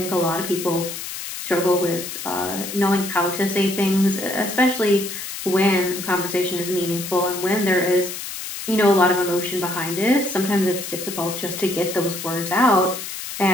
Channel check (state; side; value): noise; left; hiss, 8 dB below the sound